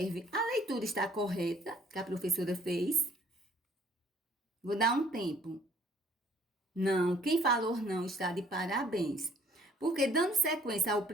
A leitura está correta, que a professora fez. Vou dar um tempo. Não, quem falou não está de parabéns. Porque dando sequência ao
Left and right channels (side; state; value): both; normal; correlation 0.59